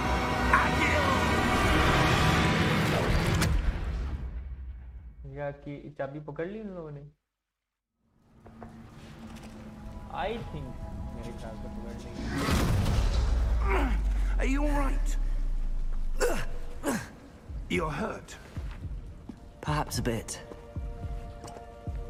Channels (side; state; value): both; identical; correlation 1.00